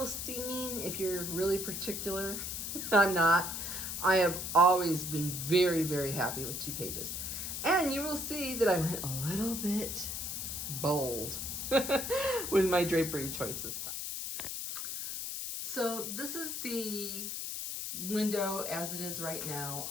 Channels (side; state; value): left; noise; hiss, 4 dB below the sound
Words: steaming if you're really particular. I'm not. I have always been very, very happy with TWOPAGES. And you will see that I went a little bit bold with my drapery choice this time. So this is the window as it is right